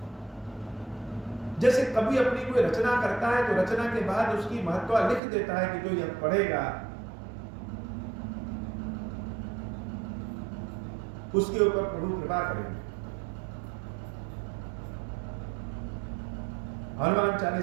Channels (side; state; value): left; drops out; at 5.2 s